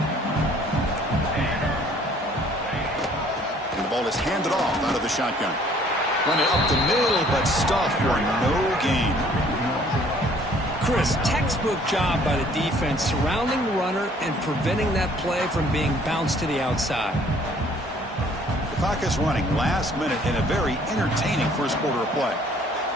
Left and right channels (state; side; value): normal; both; correlation 0.58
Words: And the ball is handed off out of the shotgun. Run it up the middle, but stuffed for no gain. Chris, textbook job by the defense surrounding the runner and preventing that play from being bounced to the outside. The clock is running last minute in a very entertaining first quarter of play.